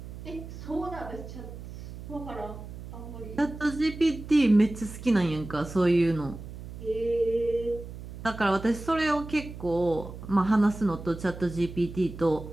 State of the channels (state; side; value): noise; right; hum, 12 dB below the sound